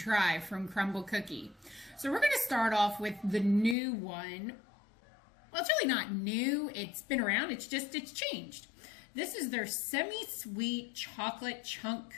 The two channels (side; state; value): right; drops out; at 3.8 s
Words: from Crumbl Cookie. So we're going to start off with the new one. Well, it's really not new. It's been around. It's changed. This is their semi-sweet chocolate chunk